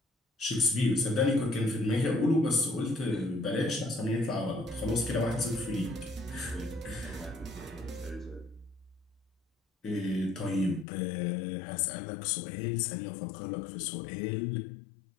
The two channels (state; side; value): drops out; right; at 10.9 s